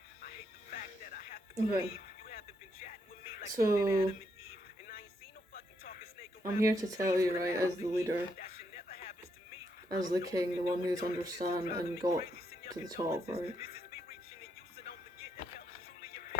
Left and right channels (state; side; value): normal; both; correlation 0.76